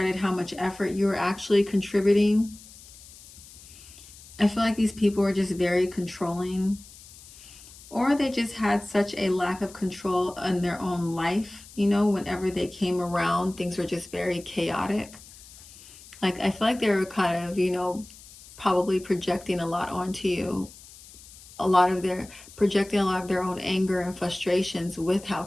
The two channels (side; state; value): left; noise; hiss, 20 dB below the sound